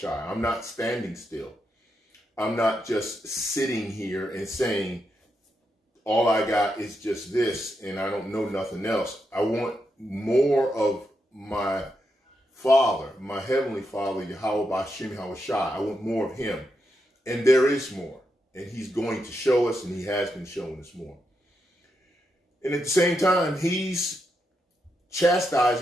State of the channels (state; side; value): normal; both; correlation 0.84